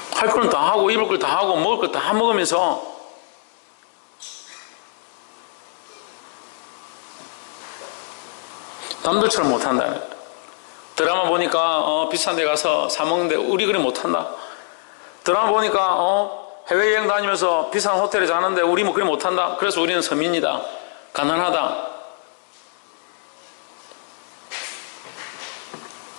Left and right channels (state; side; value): silent; right; digital silence